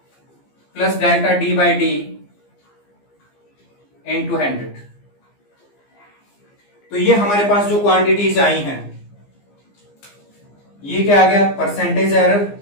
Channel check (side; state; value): right; late; 15 ms